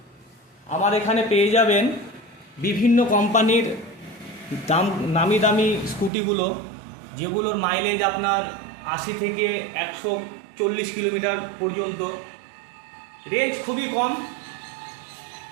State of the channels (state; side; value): drops out; left; at 6.1 s